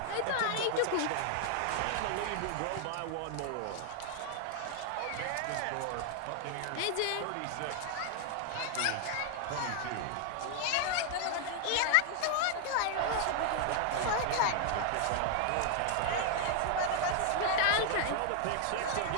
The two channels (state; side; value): different; both; correlation 0.00